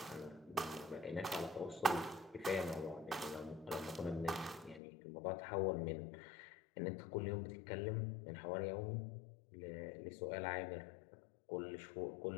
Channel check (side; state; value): right; drops out; at 4.8 s